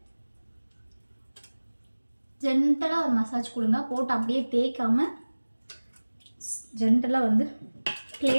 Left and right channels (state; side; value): inverted; both; correlation -1.00